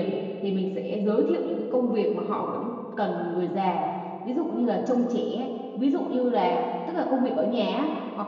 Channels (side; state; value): both; identical; correlation 1.00